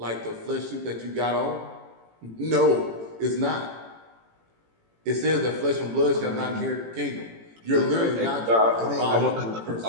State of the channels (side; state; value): left; late; 18 ms